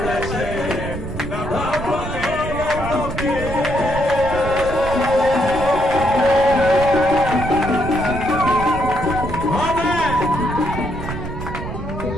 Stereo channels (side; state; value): right; noise; rumble, 7 dB below the sound